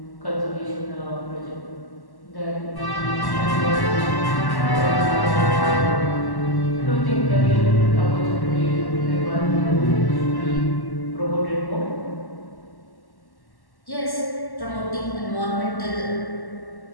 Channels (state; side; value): late; right; 1.1 ms